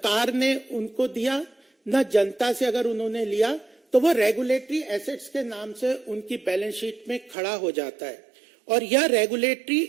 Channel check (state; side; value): drops out; left; at 7.4 s